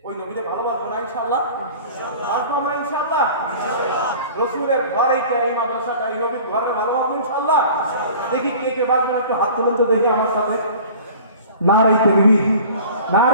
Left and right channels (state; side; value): inverted; both; correlation -0.43